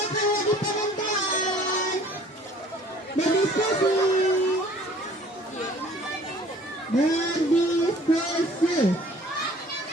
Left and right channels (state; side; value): normal; both; correlation 0.52